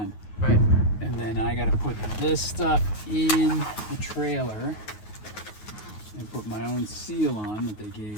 Right. And then I got to put this stuff in the trailer and put my own seal on that they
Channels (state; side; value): late; right; 9.4 ms